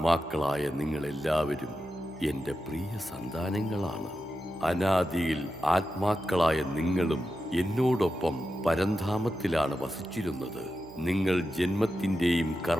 നിങ്ങളെല്ലാവരും എൻ്റെ പ്രിയ സന്താനങ്ങളാണ്. അനാദിയിൽ ആത്മാക്കളായ നിങ്ങളും എന്നോടൊപ്പം പരംധാമത്തിലാണ് വസിച്ചിരുന്നത്. നിങ്ങൾ ജന്മത്തിൻ്റെയും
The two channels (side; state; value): both; normal; correlation 0.90